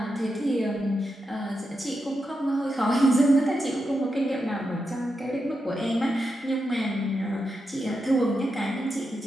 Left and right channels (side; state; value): both; normal; correlation 0.87